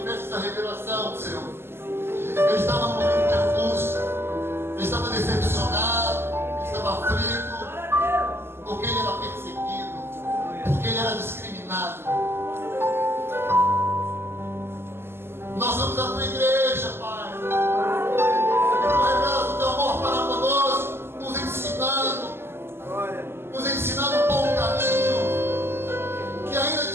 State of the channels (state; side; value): late; left; 0.12 ms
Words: essa revelação, Senhor, ele estava num momento de angústia, ele estava decepcionado, ele estava aflito, porque ele era perseguido, porque ele era discriminado. Nós somos a tua igreja, Pai. Tu revelas o teu amor para conosco, nos ensinando um bom caminho, que ainda que